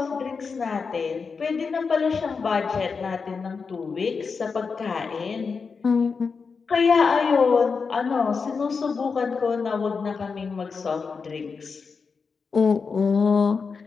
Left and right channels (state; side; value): quieter; right; 5.1 dB